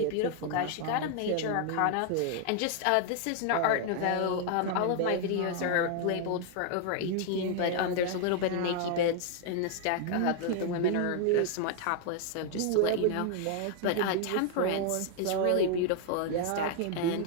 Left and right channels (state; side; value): different; both; correlation 0.00